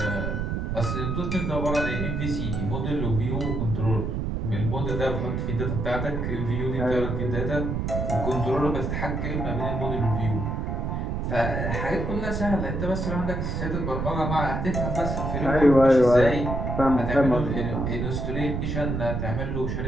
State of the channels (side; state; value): right; noise; rumble, 2 dB below the sound